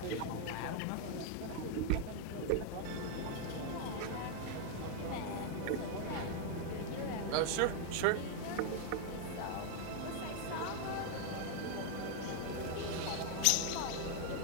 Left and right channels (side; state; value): both; different; correlation 0.00